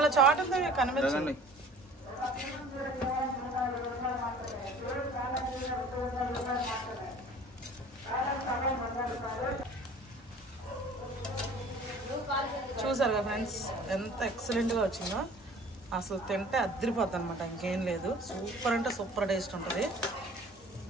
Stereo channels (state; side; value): normal; both; correlation 0.47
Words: చాటుతో కనిపించండి. చూసారుగా ఫ్రెండ్స్ ఎంత ఎక్సలెంట్గా వచ్చిందో. అసలు తింటే అద్దరిపోద్ది అనమాట, ఇంకేం లేదు. సూపర్ అంటే సూపర్ టేస్ట్ ఉంటుంది.